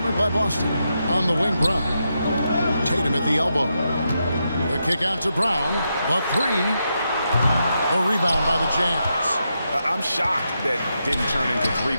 by Boston. On the wing, Brown. Tatum at the elbow. The kick out to Brown. The 3. The rebound by the Jazz. I'm shocked that didn't turn into 3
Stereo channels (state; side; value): inverted; both; correlation -0.84